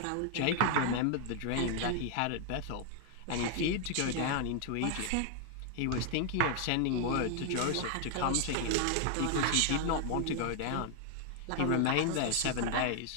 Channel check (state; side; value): different; both; correlation 0.00